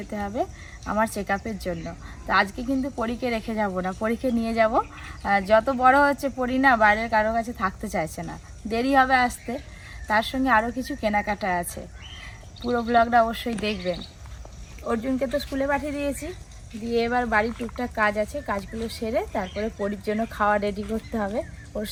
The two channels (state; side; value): identical; both; correlation 1.00